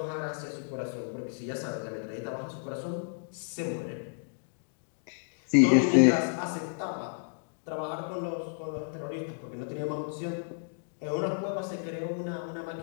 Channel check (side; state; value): right; silent; digital silence